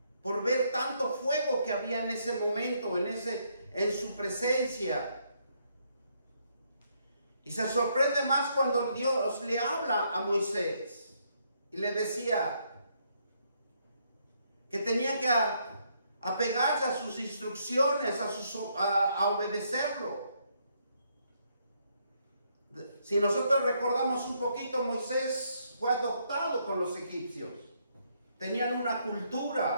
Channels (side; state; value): both; inverted; correlation -0.73